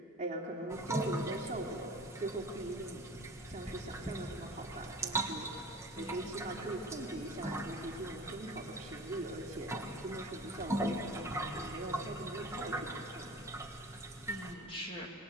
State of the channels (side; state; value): both; normal; correlation 0.39